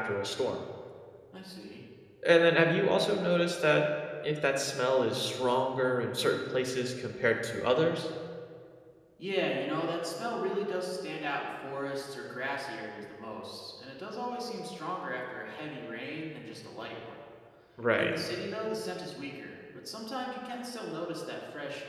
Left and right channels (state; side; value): identical; both; correlation 1.00